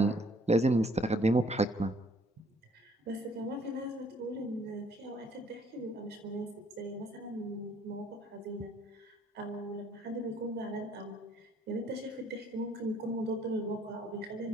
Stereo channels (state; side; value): normal; both; correlation 0.62